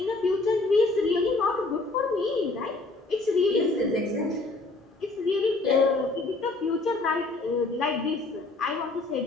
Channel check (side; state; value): right; quieter; 3.2 dB